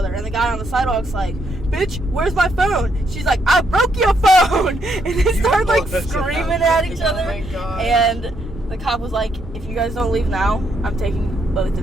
and the guy on the sidewalk's like, bitch, where's my phone? She's like, I broke your phone. And they start like screaming at each other. Oh my God. And the cop was like, if you guys don't leave now, I'm taking both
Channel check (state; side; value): normal; both; correlation 0.75